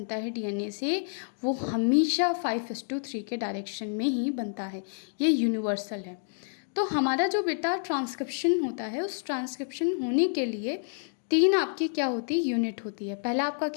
है डीएनए से, वो हमेशा 5:3 के डायरेक्शन में ही बनता है। ये यूनिवर्सल है। तो हमारा जो बेटा ट्रांसक्रिप्शन होता है, उस ट्रांसक्रिप्शन होने के लिए 3 आपकी क्या होती है, यूनिट होती है। पहला आपका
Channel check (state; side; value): silent; right; digital silence